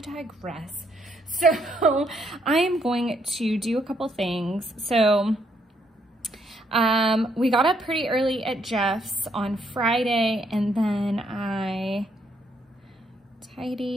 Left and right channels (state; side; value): normal; both; correlation 0.72